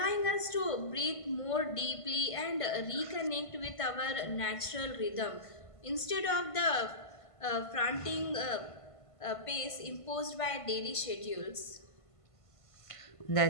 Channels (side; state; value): right; late; 1.5 ms